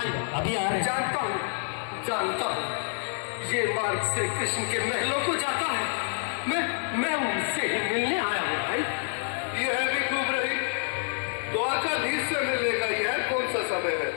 अभी आ रहे। जानता हूँ ये मार्ग श्री कृष्ण के महलों को जाता है। मैं उनसे ही मिलने आया हूँ भाई। यह भी खूब रही, द्वारकाधीश से मिलने का यह कौन सा समय है?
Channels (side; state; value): right; silent; 59 dB below the other